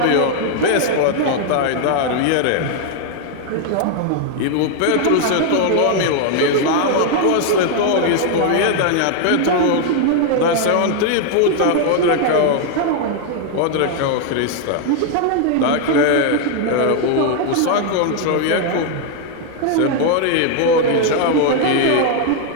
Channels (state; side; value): different; both; correlation 0.00